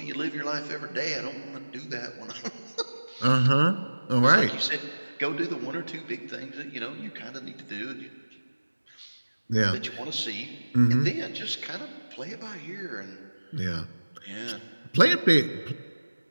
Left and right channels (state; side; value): inverted; both; correlation -1.00